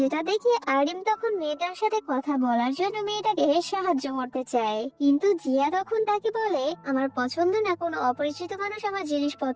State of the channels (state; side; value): identical; both; correlation 1.00